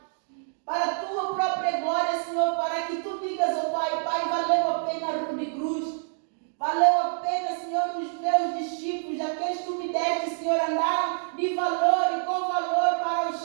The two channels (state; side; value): silent; left; digital silence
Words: para a tua própria glória, Senhor, para que tu digas ao Pai, Pai, valeu a pena a cruz de cruz, valeu a pena, Senhor, os teus discípulos, aqueles que tu me deste, Senhor, andaram de valor e com valor para os